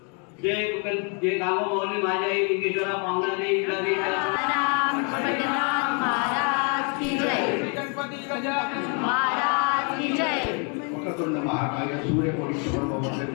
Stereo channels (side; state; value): right; quieter; 37.1 dB